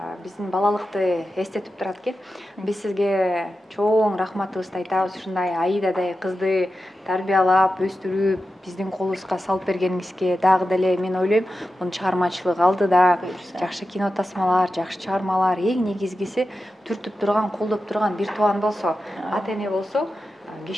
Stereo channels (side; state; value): both; normal; correlation 0.91